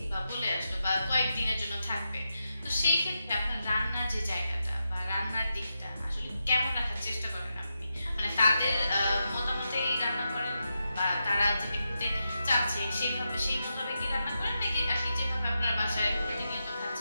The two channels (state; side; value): inverted; both; correlation -0.87